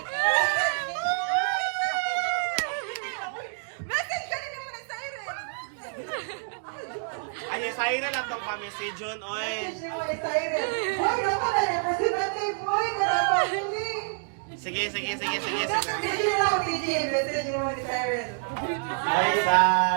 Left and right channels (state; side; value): silent; left; digital silence